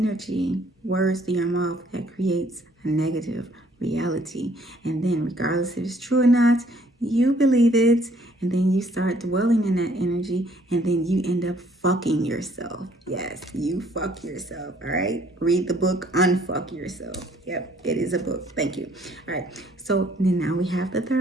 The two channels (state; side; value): normal; both; correlation 0.62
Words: words to your mouth, that creates a negative reality. And then regardless if it's true or not, you believe it, and then you start dwelling in that energy, and then you end up fucking yourself. Yes, you fuck yourself. All right, read the book Unfuck Yourself. Yep, it is a book. Thank you. All right, so then now we have the